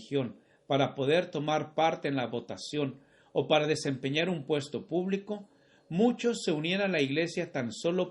para poder tomar parte en la votación o para desempeñar un puesto público, muchos se unían a la Iglesia tan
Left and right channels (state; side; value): identical; both; correlation 1.00